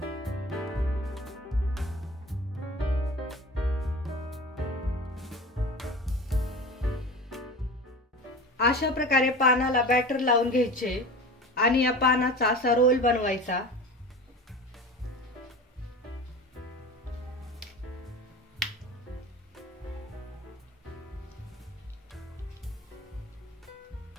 अशा प्रकारे पानाला बॅटर लावून घ्यायचे आणि या पानाचा असा रोल बनवायचा।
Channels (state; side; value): normal; both; correlation 0.35